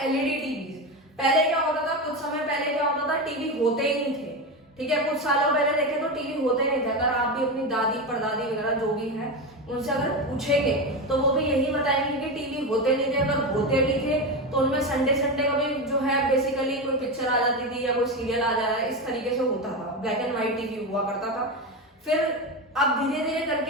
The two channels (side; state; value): both; normal; correlation 0.17